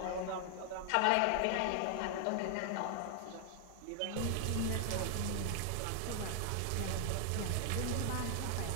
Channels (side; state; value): both; different; correlation 0.00